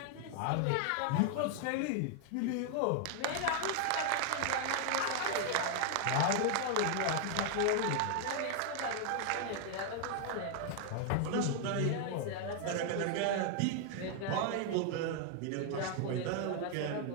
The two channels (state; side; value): different; both; correlation 0.00